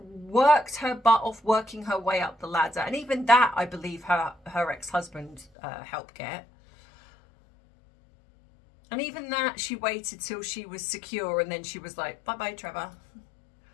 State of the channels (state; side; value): drops out; right; at 5.5 s